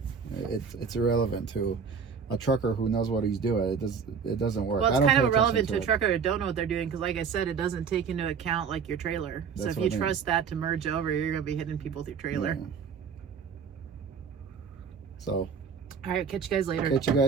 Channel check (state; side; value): quieter; left; 6.3 dB